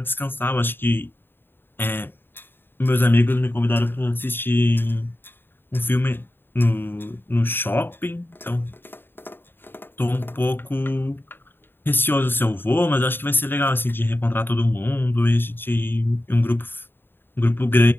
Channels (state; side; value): late; right; 0.10 ms